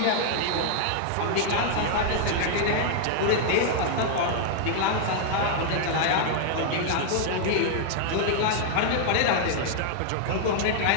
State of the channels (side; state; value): both; different; correlation -0.01